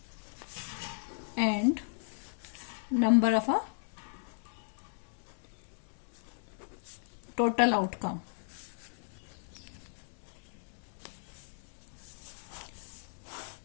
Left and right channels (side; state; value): right; silent; digital silence